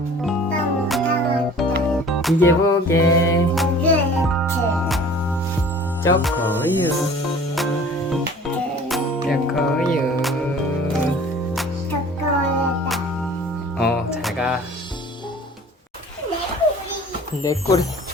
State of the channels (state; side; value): normal; both; correlation 0.47